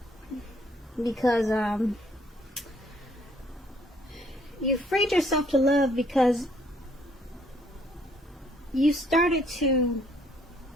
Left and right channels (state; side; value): normal; both; correlation 0.65